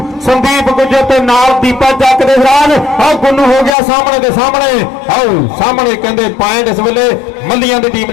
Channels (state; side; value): drops out; right; at 3.8 s